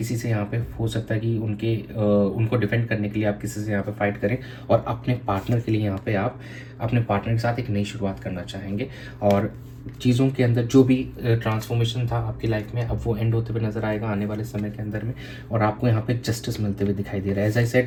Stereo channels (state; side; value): identical; both; correlation 1.00